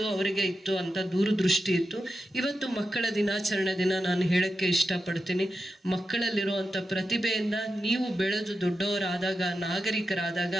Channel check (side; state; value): both; normal; correlation 0.89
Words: ಅವರಿಗೆ ಇತ್ತು ಅಂತ ದೂರದೃಷ್ಟಿ ಇತ್ತು. ಇವತ್ತು ಮಕ್ಕಳ ದಿನಾಚರಣೆ ದಿನ ನಾನು ಹೇಳಕ್ಕೆ ಇಷ್ಟಪಡ್ತೀನಿ, ಮಕ್ಕಳಲ್ಲಿರುವಂಥ ಪ್ರತಿಭೆಯಿಂದ ನೀವು ಬೆಳೆದು ದೊಡ್ಡವರಾದಾಗ, ನಾಗರಿಕರಾದಾಗ